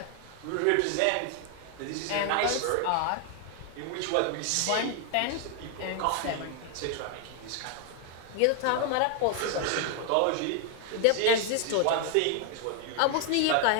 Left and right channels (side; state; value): both; different; correlation 0.00